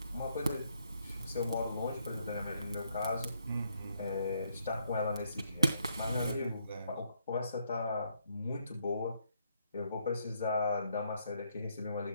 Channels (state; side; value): inverted; both; correlation -0.74